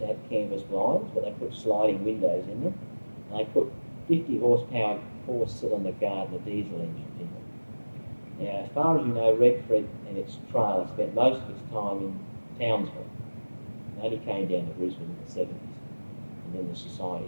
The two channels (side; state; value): both; inverted; correlation -1.00